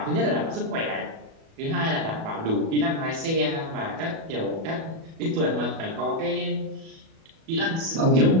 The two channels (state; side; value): late; left; 37 ms